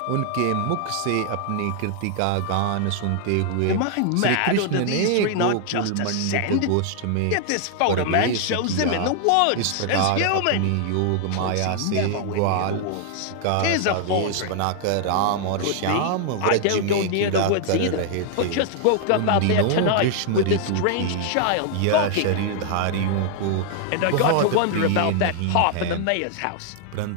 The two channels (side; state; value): both; different; correlation 0.00